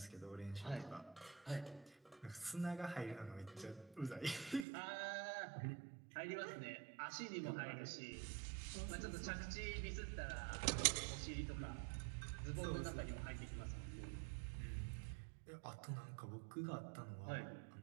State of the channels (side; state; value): left; drops out; at 4.7 s